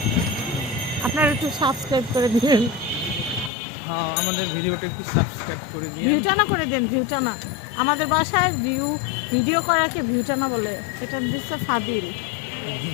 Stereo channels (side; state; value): right; drops out; at 3.5 s